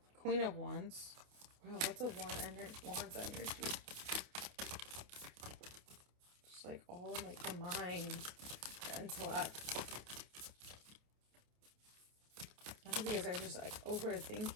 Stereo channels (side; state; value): left; late; 28 ms